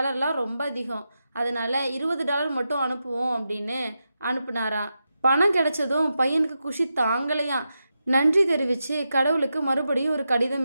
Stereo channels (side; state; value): both; inverted; correlation -0.88